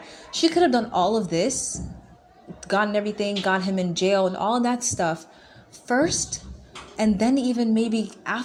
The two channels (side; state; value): both; identical; correlation 1.00